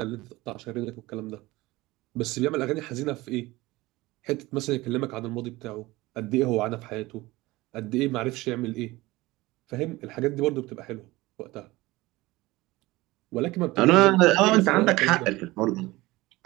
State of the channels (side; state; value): left; quieter; 20.0 dB